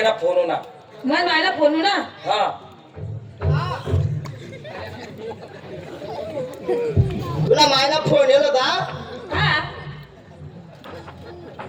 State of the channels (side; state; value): both; identical; correlation 1.00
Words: फोन होणार मग मला फोन ना हा तुला मायला फोन येलो का हा